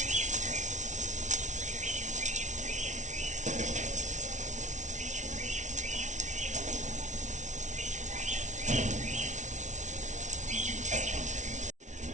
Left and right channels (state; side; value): late; left; 0.35 ms